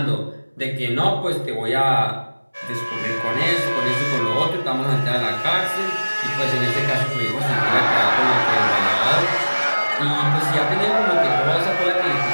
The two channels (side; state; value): both; inverted; correlation -1.00